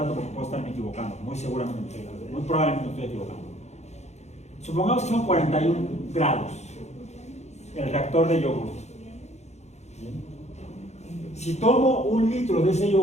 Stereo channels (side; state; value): right; late; 0.32 ms